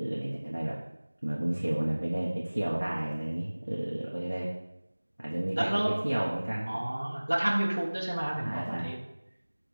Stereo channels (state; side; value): inverted; both; correlation -1.00